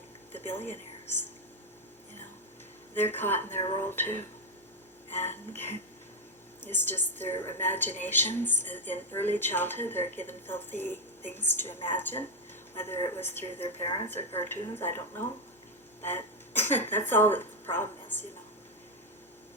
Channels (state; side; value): normal; both; correlation 0.03